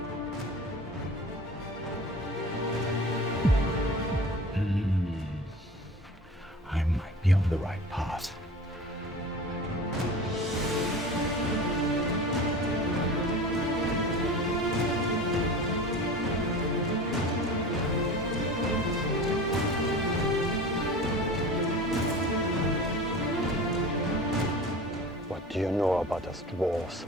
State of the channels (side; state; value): both; normal; correlation 0.36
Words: I might be on the right path. What do you know about us dwarves?